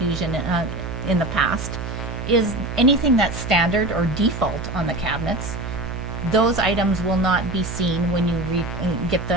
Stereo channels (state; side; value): noise; right; hum, 6 dB below the sound